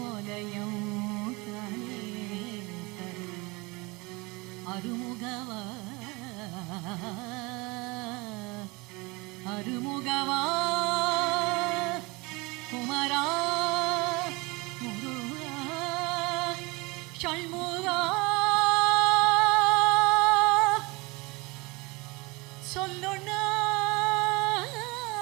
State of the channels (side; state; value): left; quieter; 25.4 dB